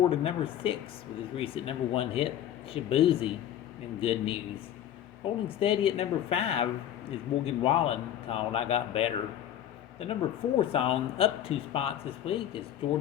to number 6 with his recent number 1 hit, Shaboozey and Good News. Holding steady at number 5 is Morgan Wallen called I Got Better. The number 4 song up 2 spots this week is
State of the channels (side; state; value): right; quieter; 10.9 dB